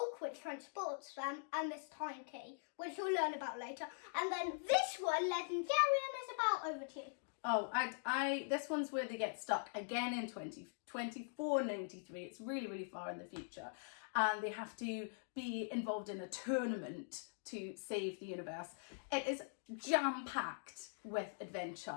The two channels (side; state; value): right; silent; digital silence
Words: which transports them, and this time key, which you'll learn about later. And then this one, Legendarium, is about. Over to you. Oh, this one's where they get stuck again in 2493. It's really, really far in the future. And they have to be involved in a tournament to save the universe. It is jam-packed with